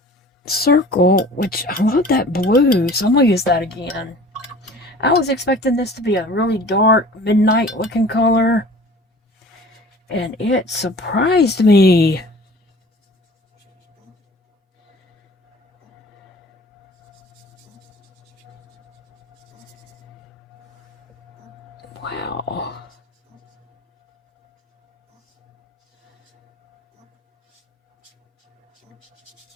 circle, which I love that blue, so I'm going to use that again. I was expecting this to be a really dark, midnight looking color, and it surprised me. Wow.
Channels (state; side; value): normal; both; correlation 0.44